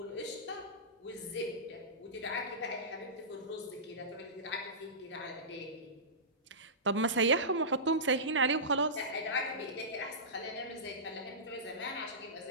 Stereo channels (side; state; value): both; normal; correlation -0.19